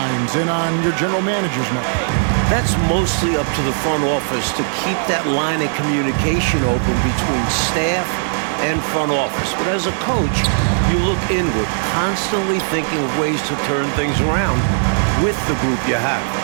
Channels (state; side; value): silent; left; digital silence